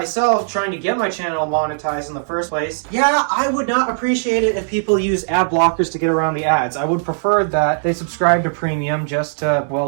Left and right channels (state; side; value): silent; left; 67 dB below the other